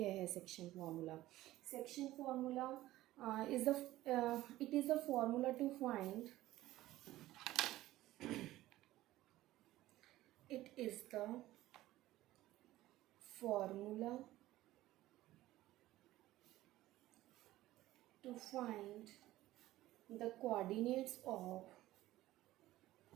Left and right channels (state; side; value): quieter; left; 15.9 dB